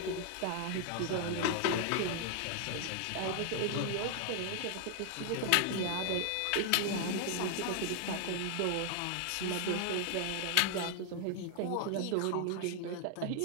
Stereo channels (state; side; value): different; both; correlation 0.00